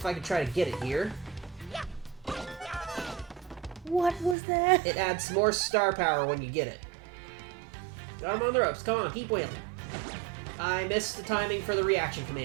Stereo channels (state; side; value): drops out; left; at 4.4 s